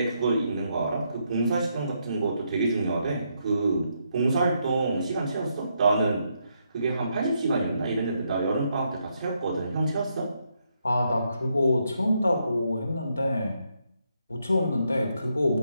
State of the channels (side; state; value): both; inverted; correlation -0.78